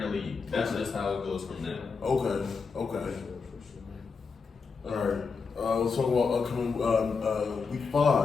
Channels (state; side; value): quieter; right; 5.1 dB